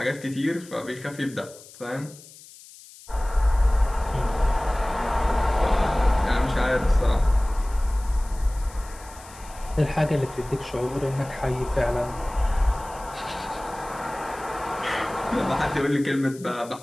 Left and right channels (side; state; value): left; noise; hiss, 20 dB below the sound